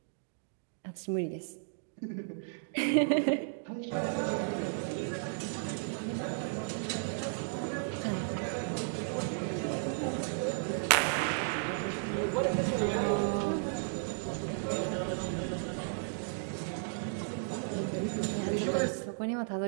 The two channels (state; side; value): silent; left; digital silence